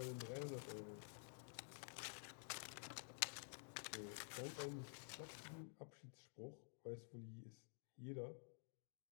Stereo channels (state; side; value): silent; right; digital silence